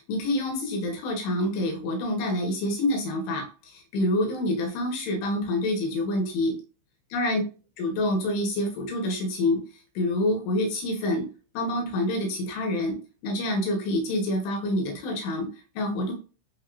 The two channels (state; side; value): late; right; 15 ms